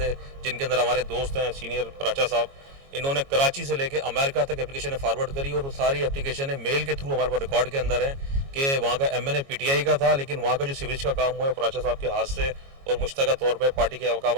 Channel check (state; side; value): late; left; 22 ms